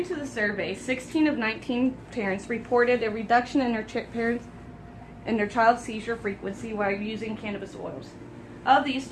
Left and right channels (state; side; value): identical; both; correlation 1.00